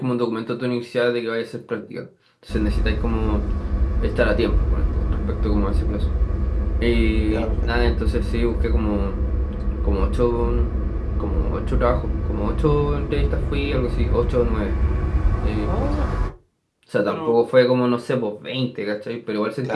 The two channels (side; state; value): both; identical; correlation 1.00